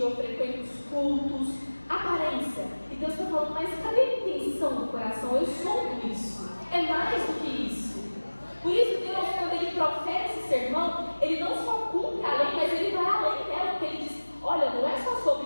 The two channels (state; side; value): inverted; both; correlation -1.00